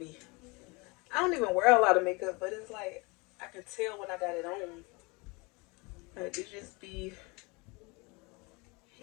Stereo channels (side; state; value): right; quieter; 27.3 dB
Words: I don't even wear a lot of makeup, but it's like I can tell when I got it on. Like it just be